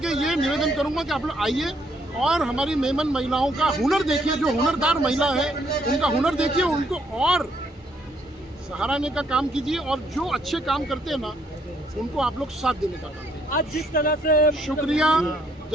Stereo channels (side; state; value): both; normal; correlation 0.69